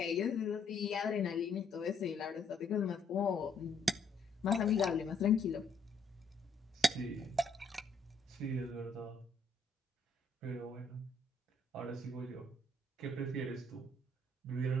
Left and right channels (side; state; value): right; quieter; 3.3 dB